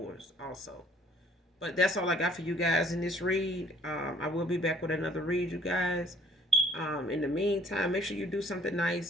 also. But that's all I got for you guys in this read. I will be back with another read, you guys. In the meantime, make sure you do something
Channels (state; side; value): normal; both; correlation 0.60